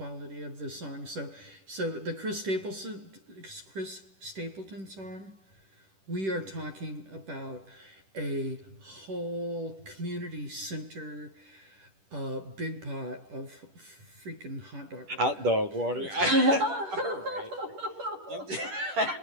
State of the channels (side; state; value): left; late; 10 ms